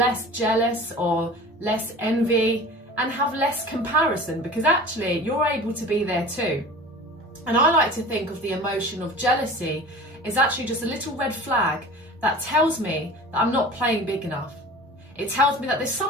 jealous or less envy and have less comparison, because actually you're able to be there too. And I like to think of the emotion of jealousy as actually just a little red flag that tells me that I'm not playing big enough. It tells me that there's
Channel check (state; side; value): normal; both; correlation 0.39